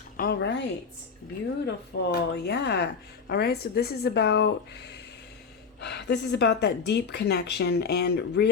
All right, beautiful. Yeah. All right, so this is about that deep connection and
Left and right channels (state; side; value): quieter; right; 5.5 dB